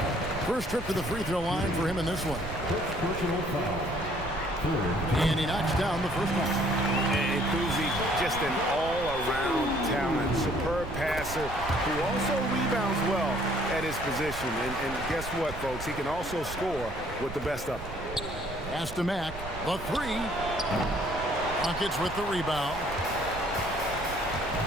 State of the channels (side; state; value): right; noise; rumble, 11 dB below the sound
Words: First trip to the free throw line for him in this one. Personal foul. And he knocks down the first one. And Kuzi, just an all-around talent, superb passer who also rebounds well at his position. And guess what, folks? He can also score with the best of them. Pass to Mack. The 3. Rockets with the rebound.